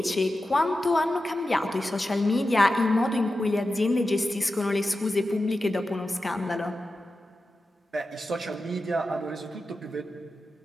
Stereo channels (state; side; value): normal; both; correlation 0.92